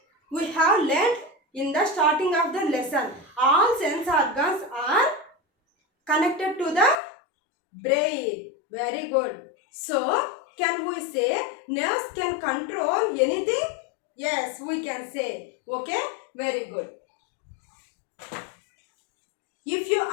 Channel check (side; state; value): right; drops out; at 7.0 s